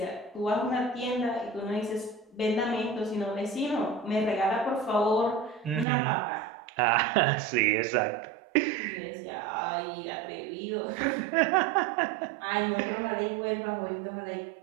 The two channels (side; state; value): left; drops out; at 5.9 s